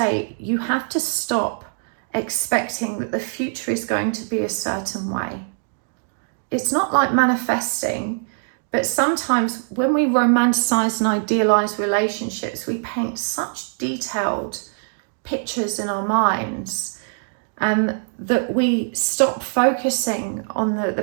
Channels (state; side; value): silent; left; 64 dB below the other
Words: you have to stop expecting that the future is going to be a certain way. It's not like manifesting, but sometimes when we romanticize and idealize relationships, we paint such detailed pictures in our minds that we stop focusing on